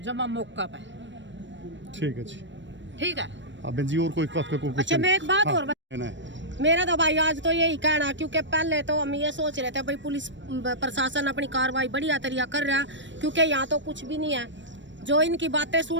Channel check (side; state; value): left; late; 0.53 ms